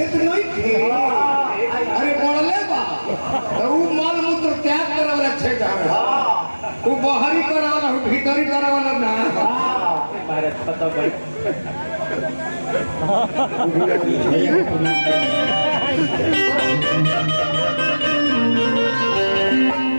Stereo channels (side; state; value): both; inverted; correlation -1.00